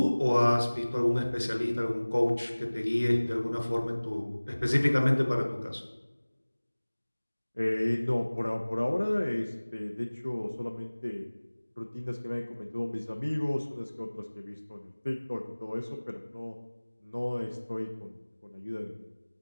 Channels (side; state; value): both; inverted; correlation -1.00